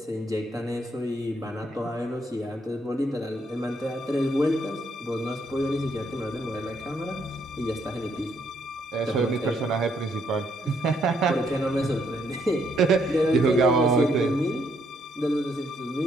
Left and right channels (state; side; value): normal; both; correlation 0.72